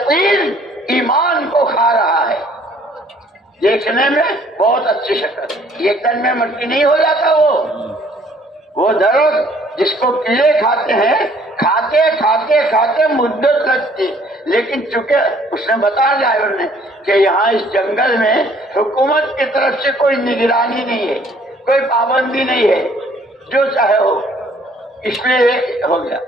ایمان کو کھا رہا ہے. دیکھنے میں بہت اچھی شکل، ایک دن میں مٹی نہیں ہو جاتا. وہ درخت جس کو کیڑے کھاتے ہیں، کھاتے کھاتے کھاتے مدت لگتی. لیکن چونکہ اس نے بتایا ڈرائیور نے کہ یہاں اس جنگل میں حکومت کی طرف سے کوئی نگرانی نہیں ہے، کوئی پابندی نہیں ہے، جو چاہے ہو. اس لیے ہو گیا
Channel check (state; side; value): normal; both; correlation 0.60